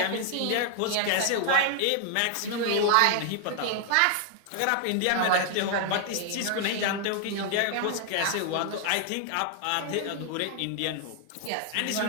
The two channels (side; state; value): both; different; correlation 0.00